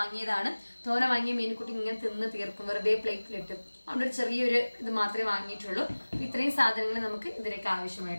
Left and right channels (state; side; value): inverted; both; correlation -1.00